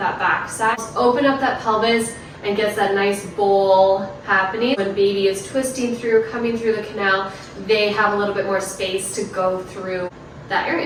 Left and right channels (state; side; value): identical; both; correlation 1.00